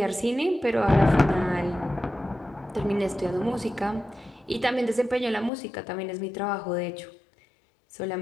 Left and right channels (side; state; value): right; drops out; at 5.5 s